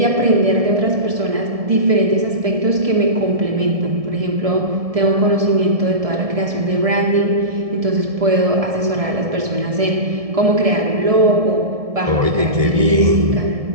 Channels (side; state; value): left; late; 1.7 ms